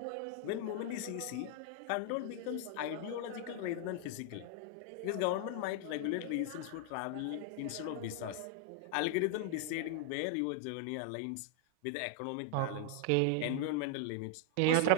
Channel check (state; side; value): different; both; correlation 0.00